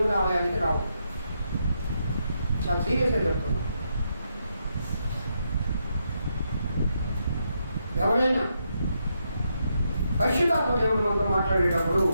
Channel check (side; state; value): both; inverted; correlation -0.81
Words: ఆలయానికి రావు. చాలా సీరియస్గా చెప్తున్నాం. ఎవరైనా పరిశుద్ధాత్మ దేవుడు మనతో మాట్లాడేటప్పుడు